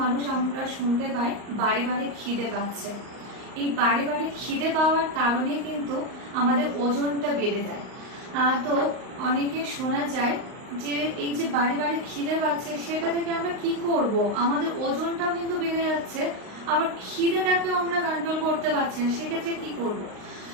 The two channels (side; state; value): left; late; 38 ms